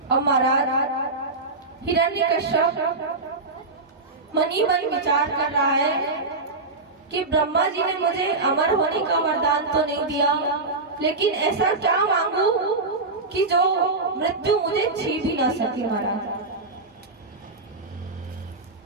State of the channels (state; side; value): quieter; left; 3.5 dB